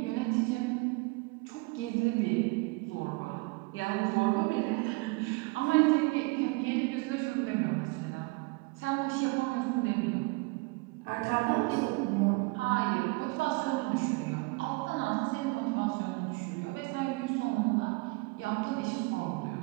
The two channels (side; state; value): left; quieter; 26.7 dB